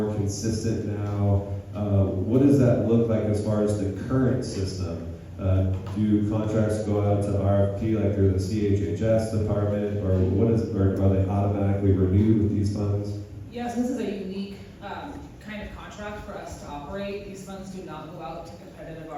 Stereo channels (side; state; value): both; identical; correlation 1.00